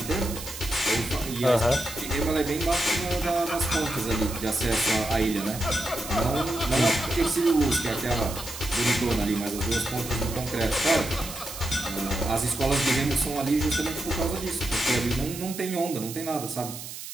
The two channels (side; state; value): right; noise; hiss, 10 dB below the sound